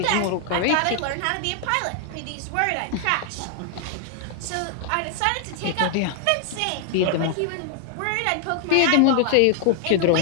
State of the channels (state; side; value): different; both; correlation 0.00